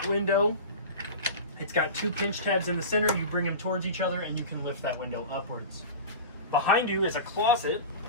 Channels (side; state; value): both; inverted; correlation -0.30